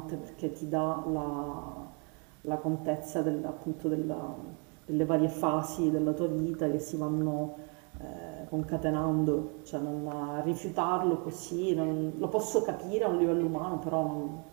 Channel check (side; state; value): left; quieter; 36.4 dB